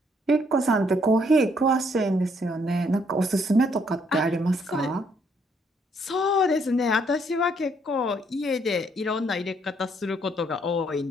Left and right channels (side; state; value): both; normal; correlation 0.69